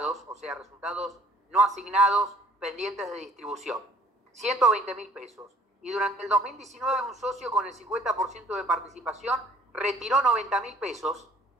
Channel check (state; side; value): normal; both; correlation 0.56